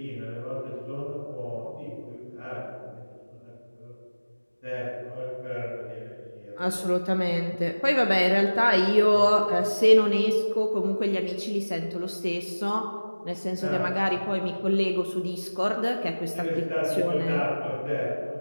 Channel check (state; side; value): inverted; both; correlation -1.00